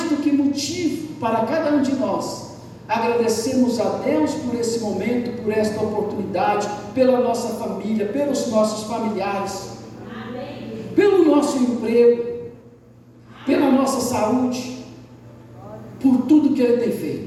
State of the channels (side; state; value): both; identical; correlation 1.00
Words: do que motivo para cada um de nós agradecermos a Deus por esse momento, por esta oportunidade, pela nossa família, pelos nossos familiares, pelo nosso emprego, pela nossa saúde, por tudo que Ele tem